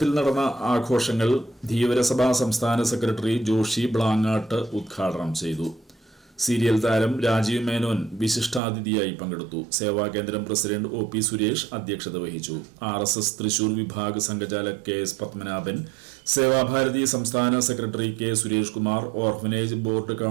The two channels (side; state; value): left; drops out; at 8.6 s